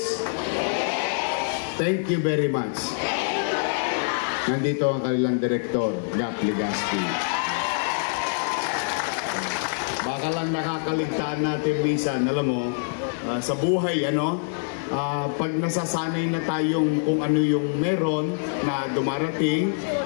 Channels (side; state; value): right; silent; digital silence